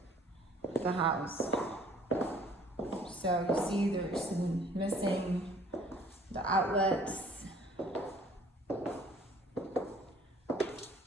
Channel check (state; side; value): normal; both; correlation 0.55